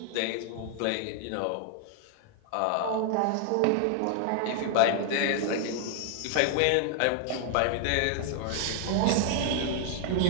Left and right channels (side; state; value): both; different; correlation 0.00